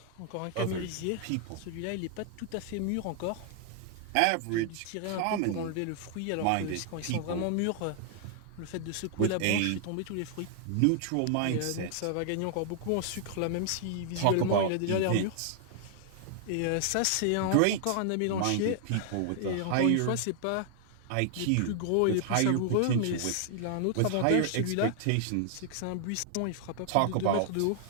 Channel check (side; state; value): both; different; correlation 0.00